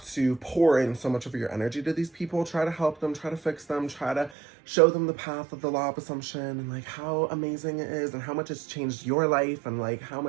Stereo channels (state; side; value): drops out; left; at 4.3 s